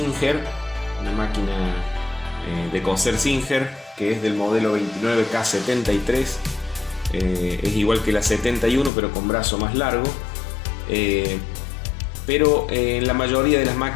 una máquina de coser Singer, que es del modelo 29K73. Es igual que la 71 pero con brazo más largo, pero en la mayoría de las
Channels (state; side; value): drops out; right; at 8.9 s